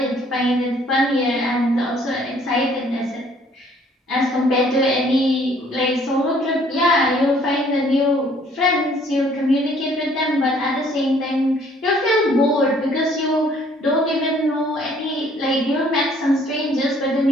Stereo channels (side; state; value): both; normal; correlation 0.60